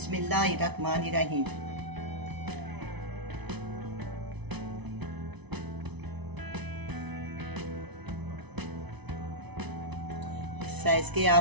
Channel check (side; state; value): left; late; 1.0 ms